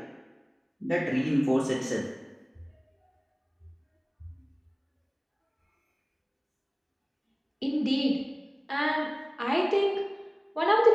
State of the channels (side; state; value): both; identical; correlation 1.00